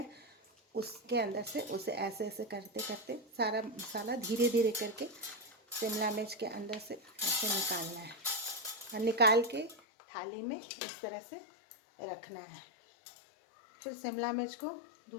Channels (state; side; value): drops out; right; at 9.8 s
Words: उसके अंदर से उसे ऐसे ऐसे करते करते सारा मसाला धीरे धीरे करके शिमला मिर्च के अंदर से ऐसे निकालना है। और निकाल के थाली में इस तरह से रखना है। फिर शिमला मिर्च को